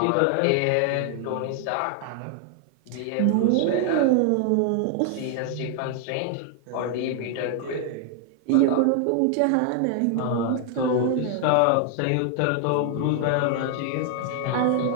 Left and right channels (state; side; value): different; both; correlation 0.00